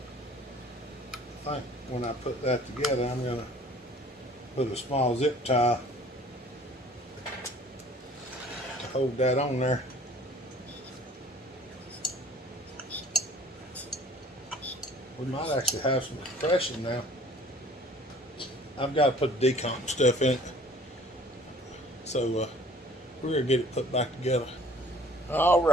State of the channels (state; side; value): normal; both; correlation 0.52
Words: I think when I put that together, I'm going to put a small zip tie to hold that on there. We might actually have some compression now. I've got to put the decomp stuff in it. So we're going to get it put back together. All